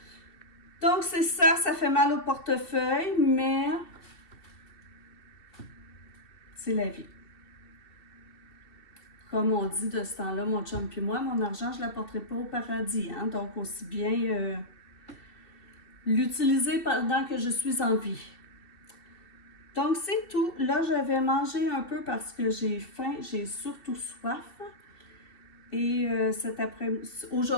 Donc, c'est ça, ça fait mal au portefeuille, mais c'est la vie. Comme on dit de ce temps-là, mon chum puis moi, mon argent, je ne l'apporterai pas au paradis. Hein? Donc, aussi bien l'utiliser pendant que je suis en vie. Donc, c'est tout. Là, je vais manger un peu parce que j'ai faim, j'ai surtout soif. Et cet après-midi,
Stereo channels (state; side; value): late; right; 2.7 ms